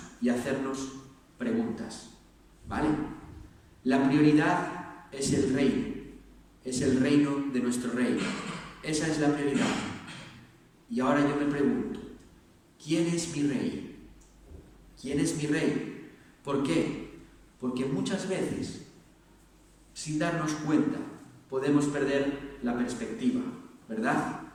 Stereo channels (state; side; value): identical; both; correlation 1.00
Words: y hacernos preguntas, ¿vale? La prioridad es el reino de nuestro rey. Esa es la prioridad. Y ahora yo me pregunto, ¿quién es mi rey? ¿Quién es mi rey? ¿Por qué? Porque muchas veces, sin darnos cuenta, podemos perder la perspectiva, ¿verdad?